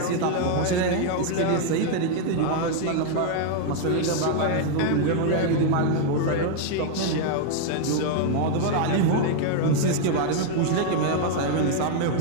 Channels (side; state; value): both; different; correlation 0.00